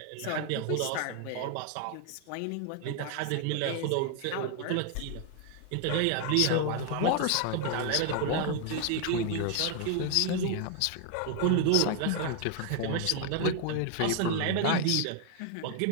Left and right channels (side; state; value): both; different; correlation 0.00